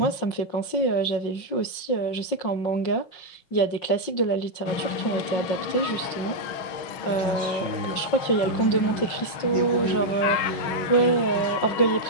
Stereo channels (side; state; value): right; late; 5.6 ms